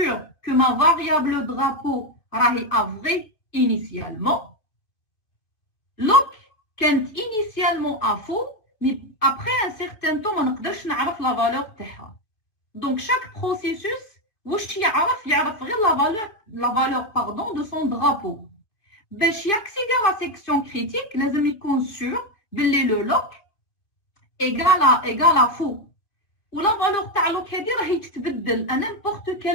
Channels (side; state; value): right; late; 2.5 ms